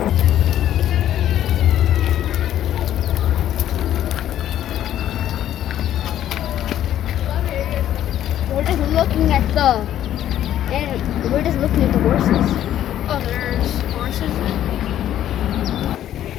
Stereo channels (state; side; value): quieter; right; 11.7 dB